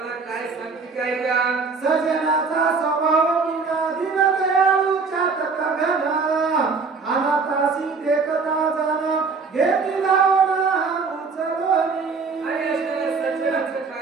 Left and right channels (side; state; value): left; quieter; 4.7 dB